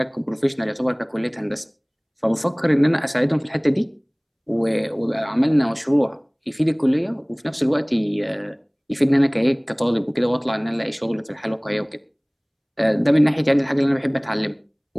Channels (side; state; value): both; identical; correlation 1.00